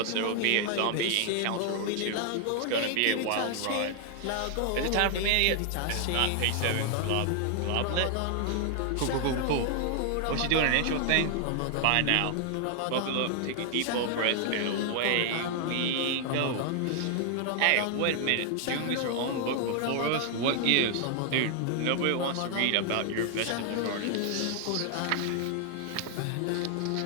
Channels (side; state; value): both; different; correlation 0.00